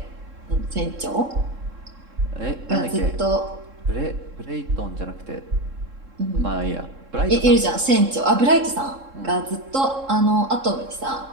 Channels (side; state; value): left; late; 3.7 ms